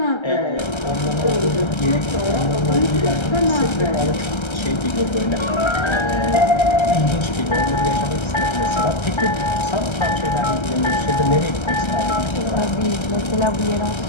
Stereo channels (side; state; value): right; late; 1.3 ms